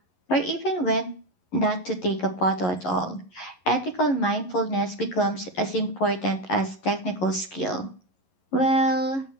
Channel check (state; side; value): late; right; 11 ms